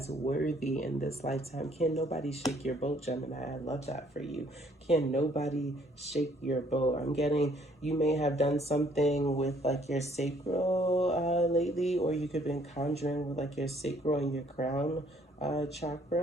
worthy in this lifetime. Can nobody shake your boat, Gemini? I love that for you. Can nobody shake your boat? I'm getting, you may have done something with like your sacral lately, or you could have been conjuring with like your sacral and your crown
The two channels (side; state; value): both; normal; correlation 0.63